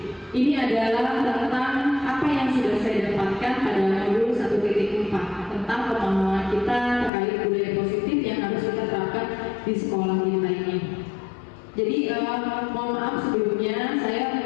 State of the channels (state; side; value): drops out; right; at 7.1 s